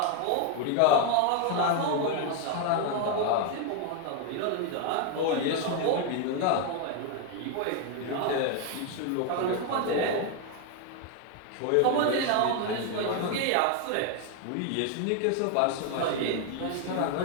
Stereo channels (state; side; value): different; both; correlation 0.01